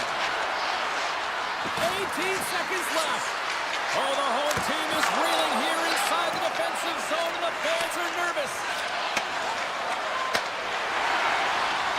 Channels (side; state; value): both; identical; correlation 1.00